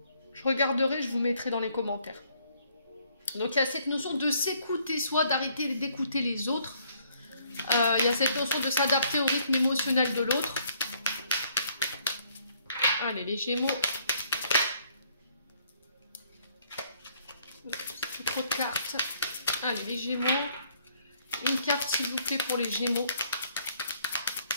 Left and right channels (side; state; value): both; inverted; correlation -0.66